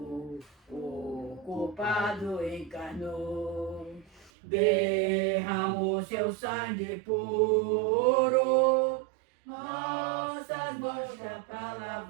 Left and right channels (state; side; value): drops out; left; at 4.3 s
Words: o culpado encarnou. Derramou seu sangue puro, nossas manchas para